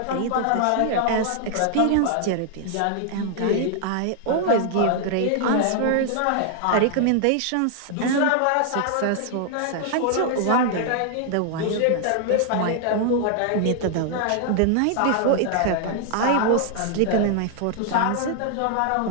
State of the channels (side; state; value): both; different; correlation 0.00